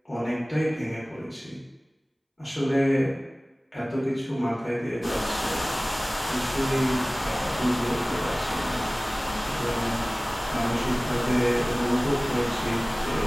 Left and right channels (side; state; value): both; normal; correlation 0.98